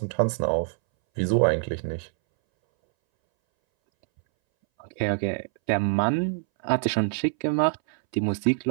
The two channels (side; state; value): left; silent; 62 dB below the other